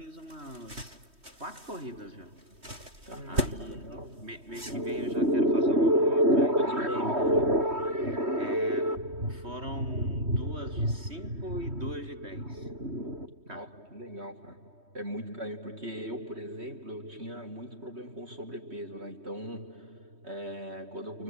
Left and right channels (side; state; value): left; late; 3.1 ms